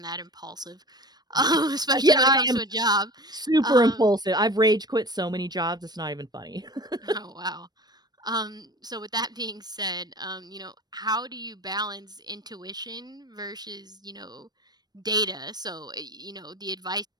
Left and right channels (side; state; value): left; late; 0.19 ms